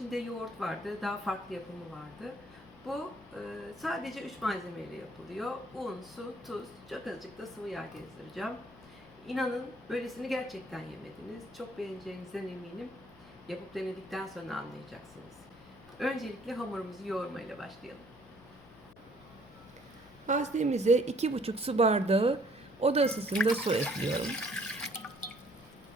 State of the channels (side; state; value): left; noise; hum, 22 dB below the sound